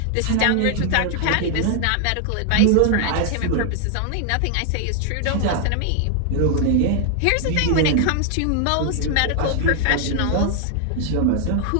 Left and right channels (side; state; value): both; different; correlation 0.00